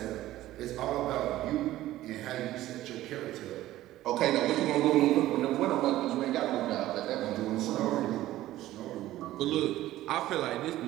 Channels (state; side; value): quieter; left; 15.0 dB